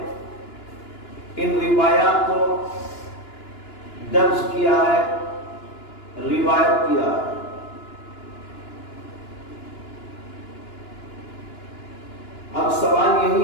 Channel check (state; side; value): late; right; 2.9 ms